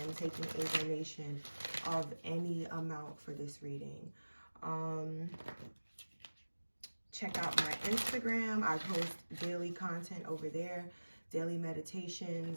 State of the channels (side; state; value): both; inverted; correlation -1.00